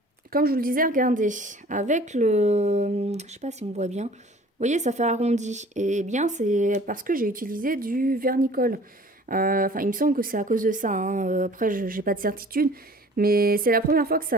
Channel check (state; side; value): normal; both; correlation 0.49